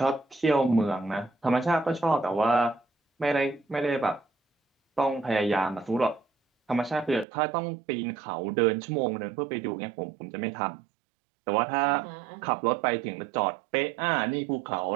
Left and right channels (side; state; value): left; drops out; at 7.2 s